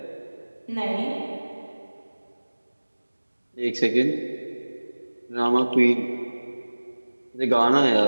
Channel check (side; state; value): both; inverted; correlation -1.00